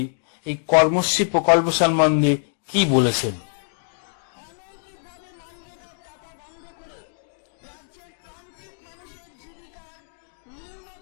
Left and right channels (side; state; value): right; silent; digital silence